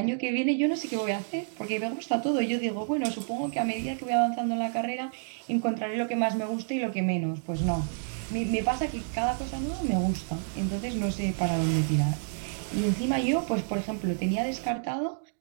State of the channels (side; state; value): left; silent; digital silence